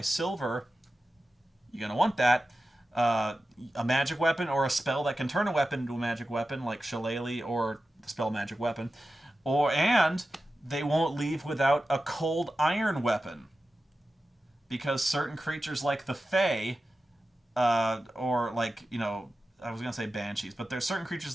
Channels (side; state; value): both; normal; correlation 0.93